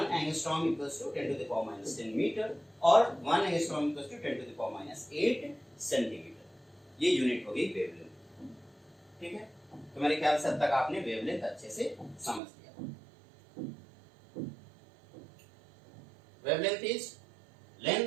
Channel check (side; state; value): left; drops out; at 12.4 s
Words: angstrom equals to 10 to the power minus 10 metre और 1 angstrom equals to 10 to the power minus 8 centimetre. ये यूनिट हो गई वेवलेंथ। ठीक है, तो मेरे ख्याल से अब तक आपने वेवलेंथ अच्छे से समझ लिया। Wavelength is